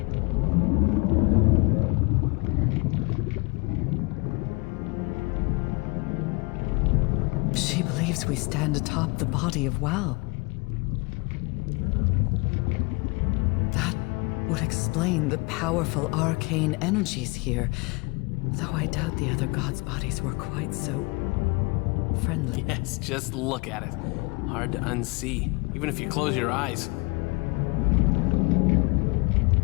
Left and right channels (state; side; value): quieter; right; 29.4 dB